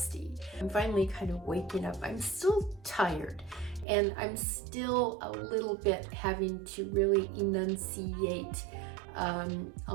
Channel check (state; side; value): drops out; left; at 3.9 s